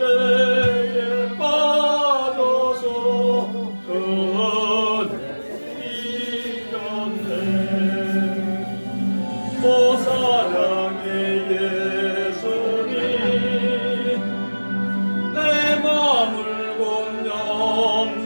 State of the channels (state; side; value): inverted; both; correlation -1.00